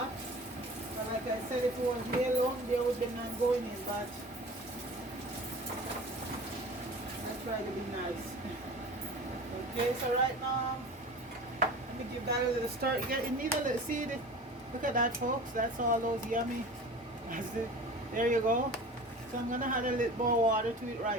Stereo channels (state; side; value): normal; both; correlation 0.38